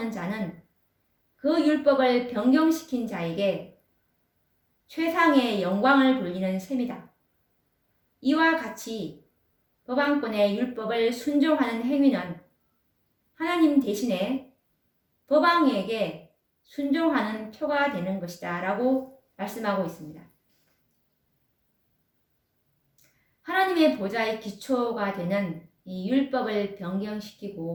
자는 그 율법을 변경시킨 자에게 최상의 영광을 돌리는 셈이다. 이와 같이 법안권의 율법을 순종하는 행위는 하나님 대신에 법왕에게 순종하는 표가 되는 것이다 라고 말씀하고 있습니다. 하나님의 보좌의 기초가 되는 이 율법을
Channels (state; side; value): identical; both; correlation 1.00